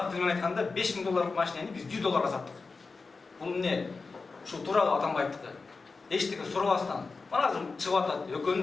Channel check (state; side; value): quieter; right; 4.2 dB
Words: тили менен айтканда $5000 машинени биз $100 саттык. Бул эмне? Ушу тууралуу Атамбаевдики. Эчтеке сурабастан. Мына азыр чыгып атат.